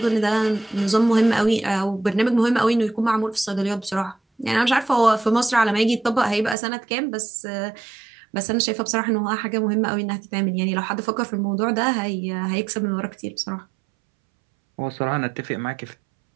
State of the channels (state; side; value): drops out; left; at 6.6 s